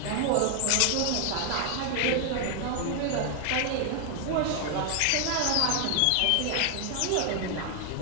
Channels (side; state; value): both; different; correlation 0.00